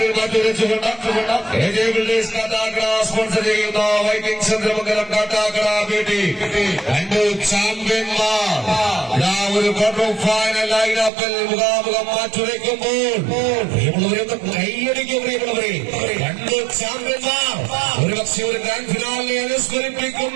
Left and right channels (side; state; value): left; drops out; at 11.1 s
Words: മാറ്റിവെച്ചുകൊണ്ട് സ്പോൺസർ ചെയ്യുന്ന വൈക്കിംഗ് ചന്ദ്രമംഗലം കാട്ടാക്കട ബ്യൂട്ടി രണ്ട് ചാമ്പ്യന്മാർ ഒരു ക്വാർട്ടർ ഫൈനൽ ലൈനപ്പിൽ മുഖാമുഖം മാറ്റുരയ്ക്കുമ്പോൾ പ്രിയമുള്ളവരൊക്കെ കൈയടിക്കും. പ്രിയമുള്ളവരെ, രണ്ട് ചാമ്പ്യന്മാർ ഒരുപക്ഷെ ഒരു ഗ്രാൻഡ് ഫിനാലിനെ